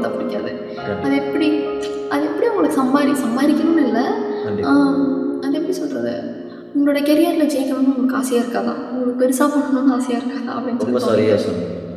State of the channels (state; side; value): identical; both; correlation 1.00